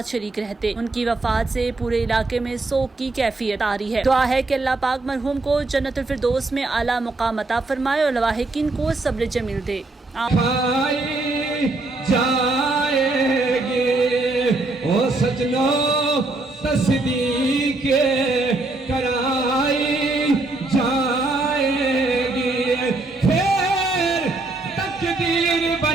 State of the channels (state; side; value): quieter; left; 3.2 dB